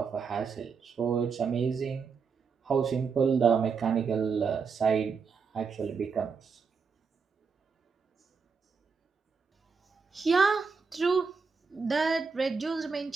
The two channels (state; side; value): quieter; left; 5.4 dB